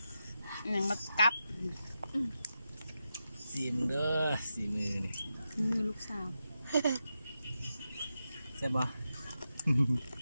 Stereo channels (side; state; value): both; inverted; correlation -0.89